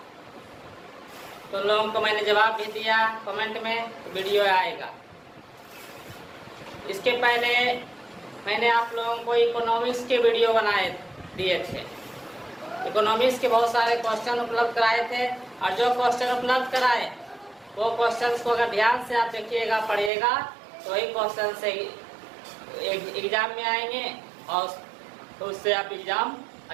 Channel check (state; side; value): drops out; left; at 20.1 s